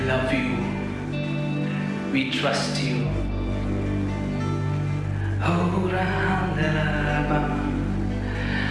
love you. We trust you. Oh,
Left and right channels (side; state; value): both; identical; correlation 1.00